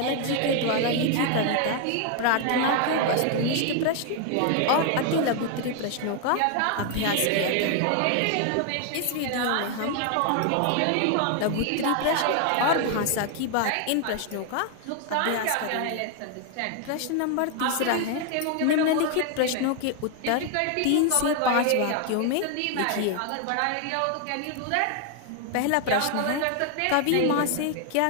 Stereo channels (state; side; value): different; both; correlation 0.00